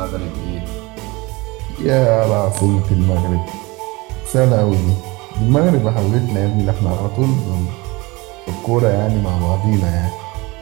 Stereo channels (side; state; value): left; quieter; 23.8 dB